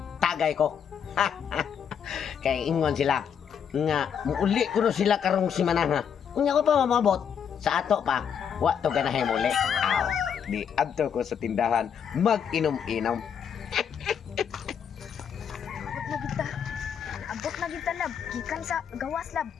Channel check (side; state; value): right; quieter; 7.8 dB